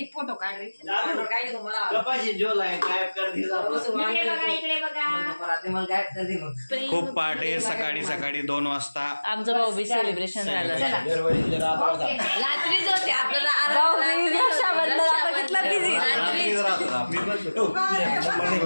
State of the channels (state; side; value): inverted; both; correlation -1.00